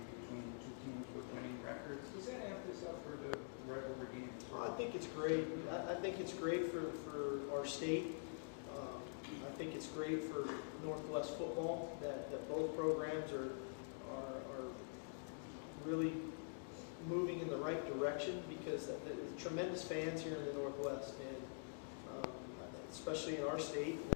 between the two teams with winning records. Does it amp this up for the regular games? I think it's great. I think it's great for our state. I think it's great for Northwest football that both programs are really moving in the right direction, because the tremendous fans here in the Northwest, and especially in our state. And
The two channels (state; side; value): silent; right; digital silence